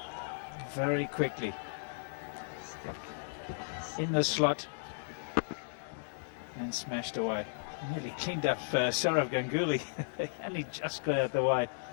very quickly. In the slot and smashed away. Nearly cleaned up Sourav Ganguly. And he just got out the way.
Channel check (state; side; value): silent; right; digital silence